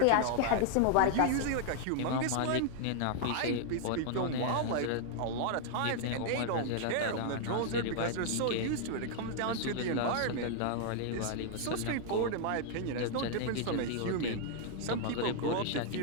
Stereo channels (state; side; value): different; both; correlation 0.00